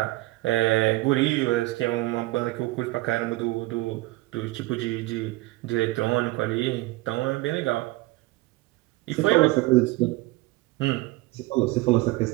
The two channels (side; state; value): left; quieter; 19.9 dB